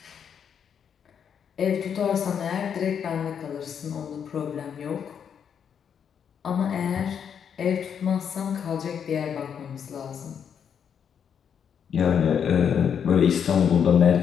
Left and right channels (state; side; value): quieter; right; 7.8 dB